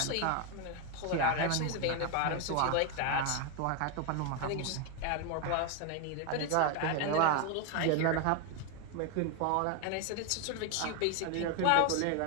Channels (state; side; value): different; both; correlation 0.01